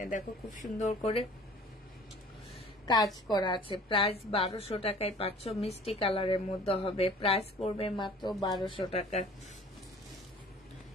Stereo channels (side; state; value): both; normal; correlation 0.48